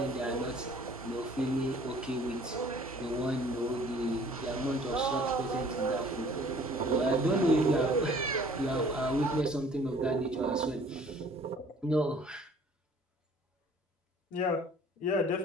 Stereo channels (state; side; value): normal; both; correlation 0.53